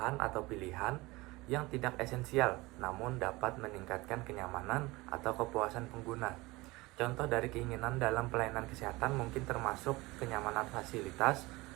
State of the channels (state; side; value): quieter; left; 21.8 dB